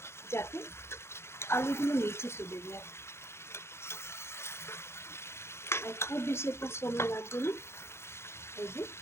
যাতে আলুগুলো নিচে চলে যায়। আর খুব বেশি একটা সময় লাগবে না। এই যে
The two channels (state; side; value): late; right; 0.12 ms